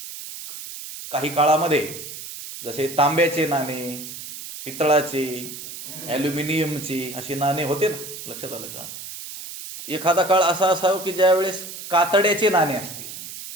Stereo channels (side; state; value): right; noise; hiss, 11 dB below the sound